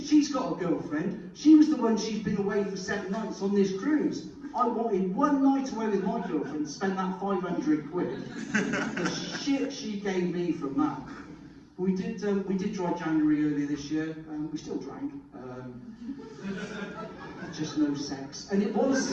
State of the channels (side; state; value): both; identical; correlation 1.00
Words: got a girlfriend. She was the one, she's been away for 7 nights on this cruise. I wanted one night away with my girlfriend to spend that 500 quid. The shit she gave me from that. We did dry January earlier this year. We still drank. Just no sex. And it was